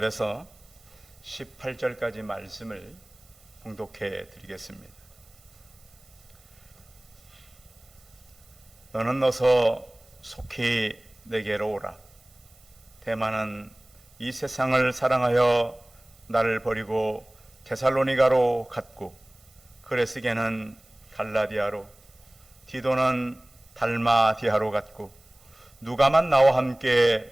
18절까지 말씀을 봉독해 드리겠습니다. 너는 어서 속히 내게로 오라. 대만은 이 세상을 사랑하여 나를 버리고 데살로니가로 갔고, 그레스게는 갈라디아로, 디도는 달마디아로 갔고, 누가만 나와 함께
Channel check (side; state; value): right; noise; hiss, 29 dB below the sound